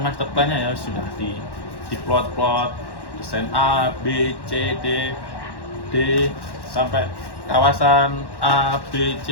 plan-nya ya, sudah di plot desain A, B, C, D sampai kawasan A, B,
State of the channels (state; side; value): late; right; 1.1 ms